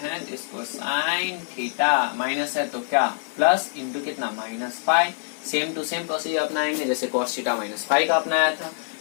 इसको साइन थीटा माइनस है तो क्या प्लस इंटू कितना minus five, same to same procedure अपनाएंगे जैसे कॉस थीटा माइनस फाइव का अपनाया था।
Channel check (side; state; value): right; silent; digital silence